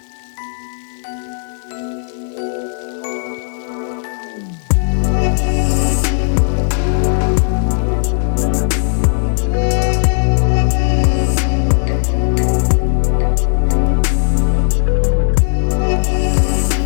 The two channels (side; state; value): right; silent; 69 dB below the other